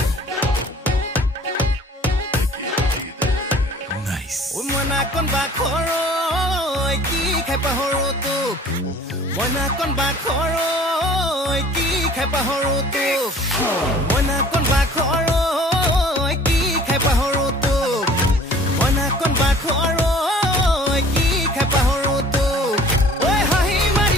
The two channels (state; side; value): normal; both; correlation 0.50